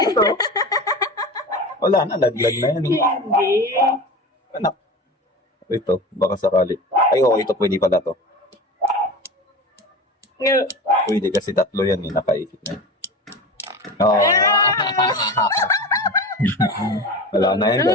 Wala na, laglag na yan. Hindi. Anak. Ito, baka sakali. Ay, ito pwede pala to. Pwede kasi tatlo yan nakaikit na yan. Wala na yan,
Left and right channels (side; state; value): both; normal; correlation 0.31